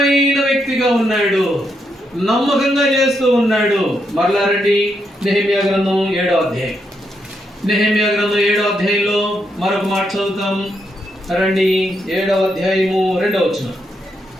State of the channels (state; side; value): normal; both; correlation 0.80